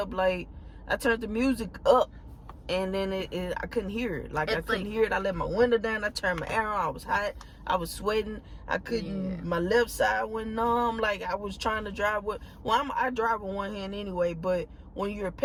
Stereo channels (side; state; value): both; identical; correlation 1.00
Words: up, and then I couldn't hear it. Like, I couldn't like, hear it. I let my window down. I turned my air on. I was hot. I was sweating. I couldn't. Yeah. My left side went numb. Like, I was trying to drive with. Well, I drive with one hand anyway. But when you're